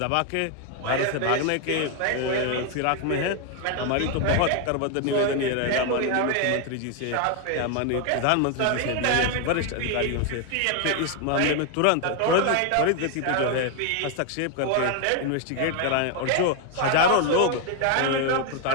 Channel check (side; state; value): both; different; correlation 0.01